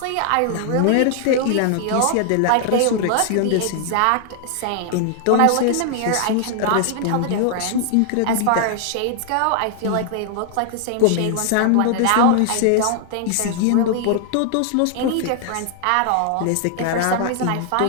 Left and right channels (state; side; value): different; both; correlation 0.00